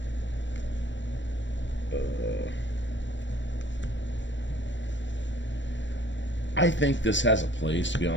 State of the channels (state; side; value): late; right; 0.53 ms